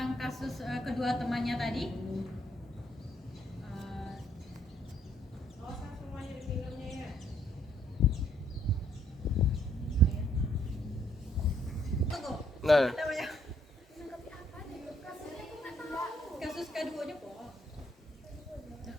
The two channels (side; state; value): both; normal; correlation 0.68